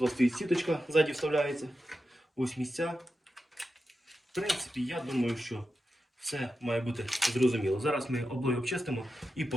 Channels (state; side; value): normal; both; correlation 0.90